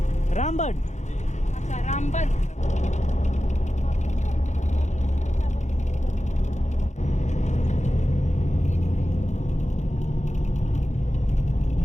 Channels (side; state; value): right; late; 0.34 ms